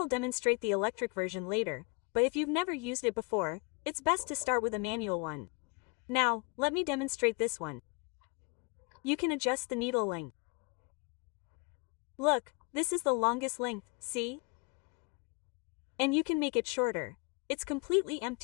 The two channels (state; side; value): quieter; right; 32.3 dB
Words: demonstrate the electric version later, but if you've never used it before, it's best to start with a manual one. Now, let me demonstrate this one. You can adjust the needle length. Look, this is the longest length, see? And you can make it shorter. It's completely